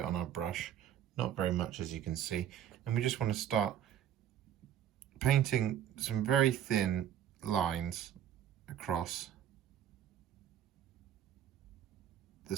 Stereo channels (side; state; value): left; quieter; 10.3 dB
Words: on our brush, not very much as you can see, and we just want to start painting some very thin lines across